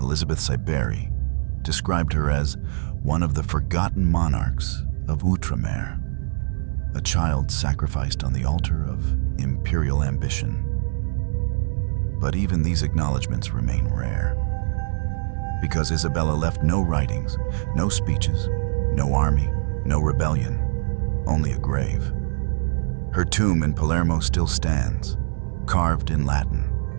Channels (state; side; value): silent; left; digital silence